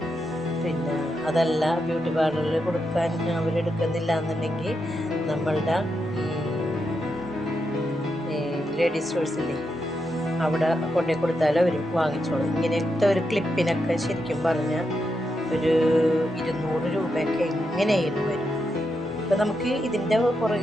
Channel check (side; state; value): both; normal; correlation 0.84